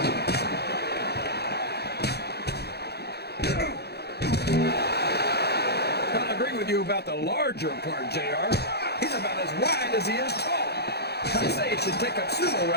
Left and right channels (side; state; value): right; late; 0.48 ms